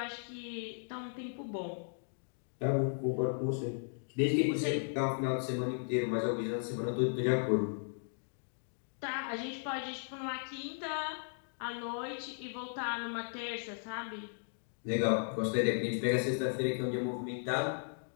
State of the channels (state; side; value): silent; right; digital silence